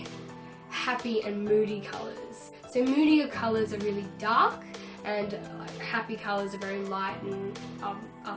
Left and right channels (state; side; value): identical; both; correlation 1.00